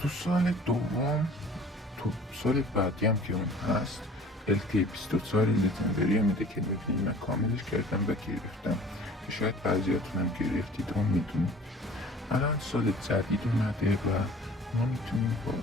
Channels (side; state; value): both; normal; correlation 0.48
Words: سال دوم، تو سال بعدی هم که اون هست LT24 لژندری میده که میبینید من کاملش کردم و گرفتم که شاید بعضیاتون هم گرفتید و میدونید. الان سال جدید اومده و ما میتونیم با